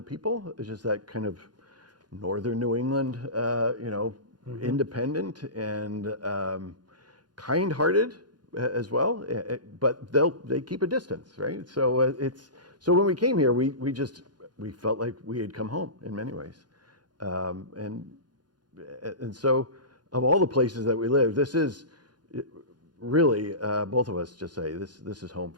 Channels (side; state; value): left; late; 0.70 ms